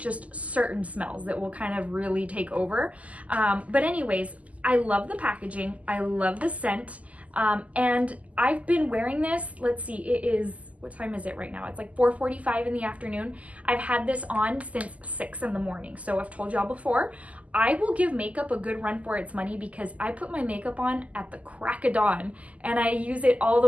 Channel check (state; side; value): late; left; 0.071 ms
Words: certain smells that will kind of really take over. But anyways, I love the packaging. I love the scent. And I've been wearing this, let's see, it is, what time is it right now? It's like 4:45 in the afternoon. I've had this on since 6 in the morning. So I've told y'all before, I will give makeup a good run for its money because I put my makeup on at the crack of dawn and I use it all